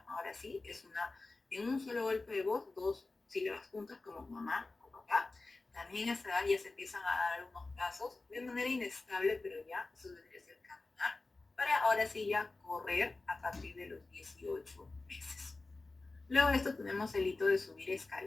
Ahora sí, es en un solo golpe de voz, 2 sílabas juntas como mamá o papá. También a esa edad ya se empiezan a dar algunos pasos de manera inestable, pero ya eso debería ser caminar. Para ahora sí ya correr a partir de los 18 meses. Luego de esto tenemos el hito de subir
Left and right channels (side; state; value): right; quieter; 3.4 dB